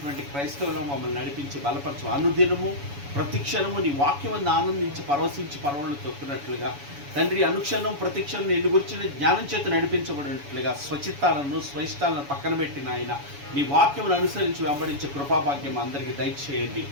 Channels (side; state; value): left; late; 7.1 ms